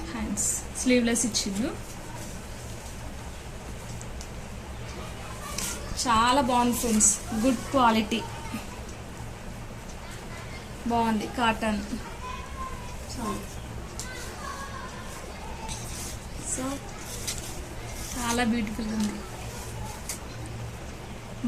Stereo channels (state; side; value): identical; both; correlation 1.00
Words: హ్యాండ్స్ స్లీవ్లెస్ ఇచ్చిండు. చాలా బాగుంది ఫ్రెండ్స్, గుడ్ క్వాలిటీ, బాగుంది. కాటన్. సో చాలా బ్యూటిఫుల్గా ఉంది.